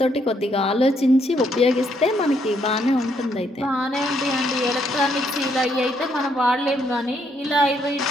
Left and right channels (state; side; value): normal; both; correlation 0.73